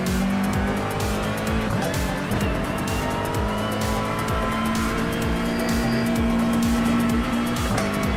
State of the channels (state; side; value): identical; both; correlation 1.00